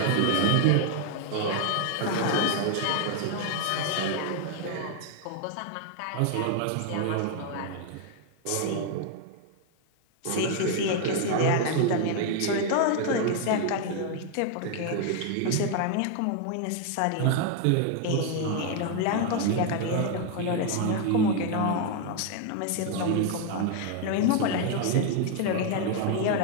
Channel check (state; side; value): different; both; correlation 0.00